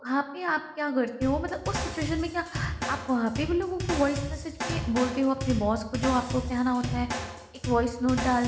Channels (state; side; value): identical; both; correlation 1.00